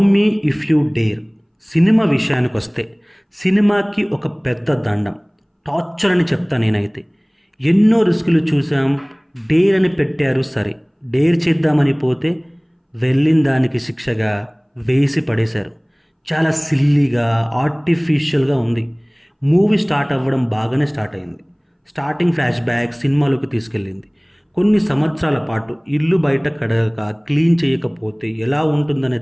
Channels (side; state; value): both; identical; correlation 1.00